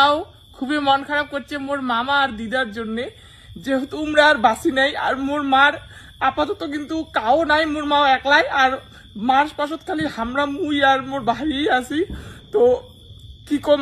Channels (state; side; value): identical; both; correlation 1.00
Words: খুবই মন খারাপ করছে মোর মামা আর দিদার জন্য, যেহেতু উমরা আর বাসি নাই। আর মোর মার আপাতত কিন্তু কাও নাই, মোর মাও একলাই। আর মার পাশত খালি হামরা মুই আর মোর ভাই আছি। তো কি